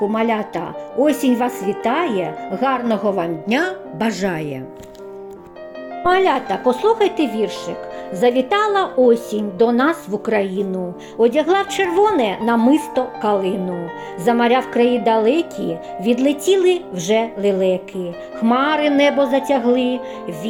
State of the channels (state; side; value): identical; both; correlation 1.00